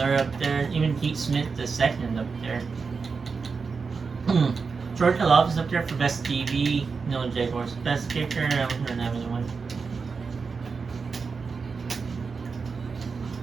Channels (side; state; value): left; quieter; 5.0 dB